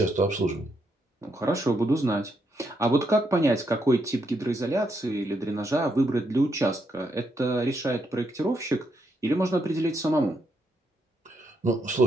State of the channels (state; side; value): normal; both; correlation 0.78